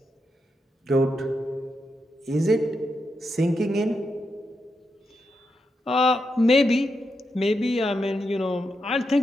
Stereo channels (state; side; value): normal; both; correlation 0.85